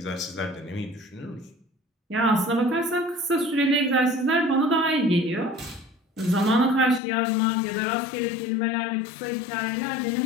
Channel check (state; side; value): drops out; right; at 7.0 s